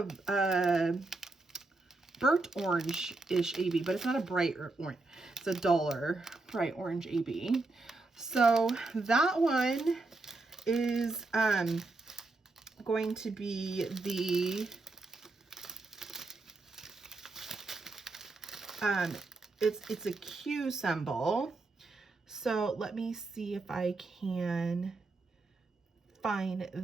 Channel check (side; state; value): left; quieter; 3.3 dB